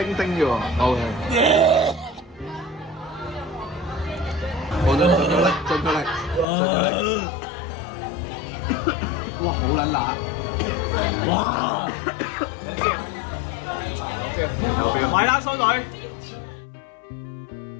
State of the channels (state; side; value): drops out; right; at 6.5 s